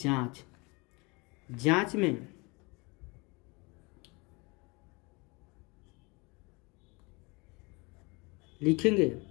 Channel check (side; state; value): right; quieter; 27.5 dB